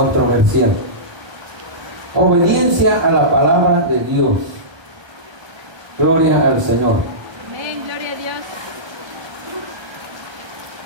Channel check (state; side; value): late; left; 1.3 ms